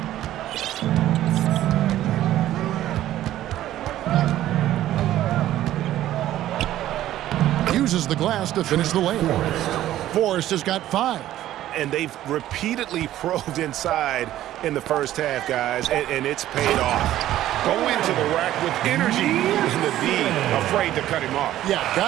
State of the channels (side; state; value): left; quieter; 13.4 dB